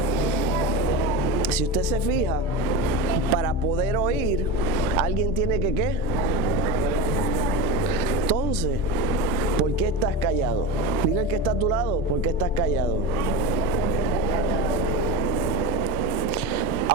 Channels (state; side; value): normal; both; correlation 0.24